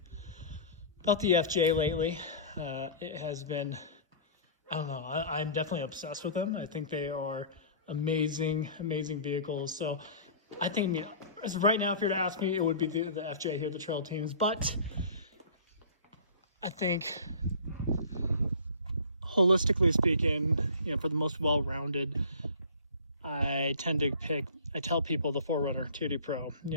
FJ lately. It has been, I don't know, I'm definitely obsessed with them. I think they are amazing vehicles. So I think, I mean, as right now, if you were to ask me, it would be the FJ here, the Trail Teams. But I think, holistically speaking, you know, for the most well-rounded, I tell people the 4Runner TRD Pro,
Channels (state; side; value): inverted; both; correlation -0.42